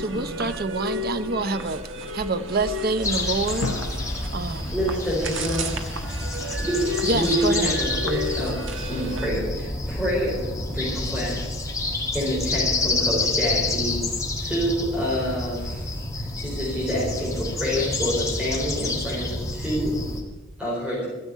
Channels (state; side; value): normal; both; correlation 0.37